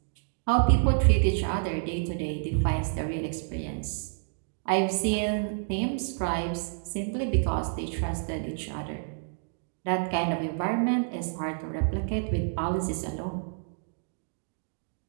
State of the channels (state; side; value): silent; left; digital silence